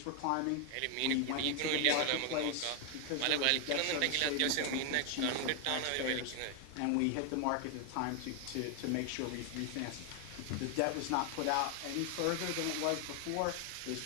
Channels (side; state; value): both; different; correlation 0.01